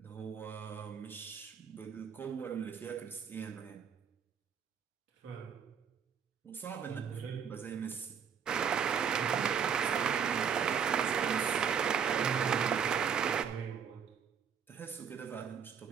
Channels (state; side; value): quieter; left; 7.2 dB